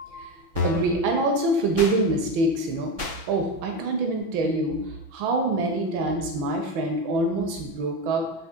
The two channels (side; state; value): left; late; 6.0 ms